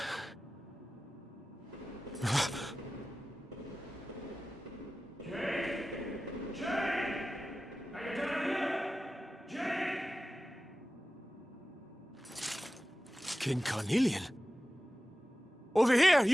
King Carnelian? Over here,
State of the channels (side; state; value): both; normal; correlation 0.95